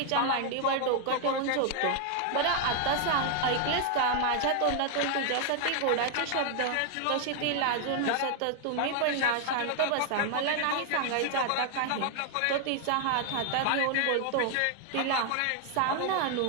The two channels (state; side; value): different; both; correlation 0.00